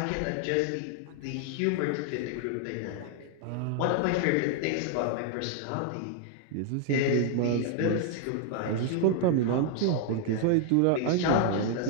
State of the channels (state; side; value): different; both; correlation 0.00